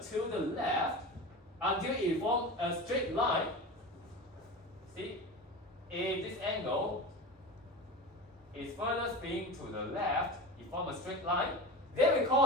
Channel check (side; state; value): both; normal; correlation 0.28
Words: the left until it forms a straight line. See, if this angle is further spinning to the left, it forms a straight line. Then we